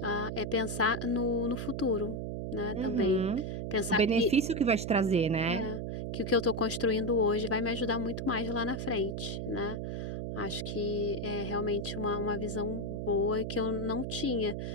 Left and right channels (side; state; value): right; noise; hum, 4 dB below the sound